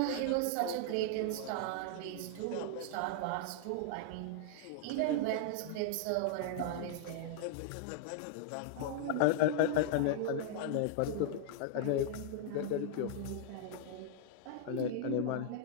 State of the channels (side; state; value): both; different; correlation -0.01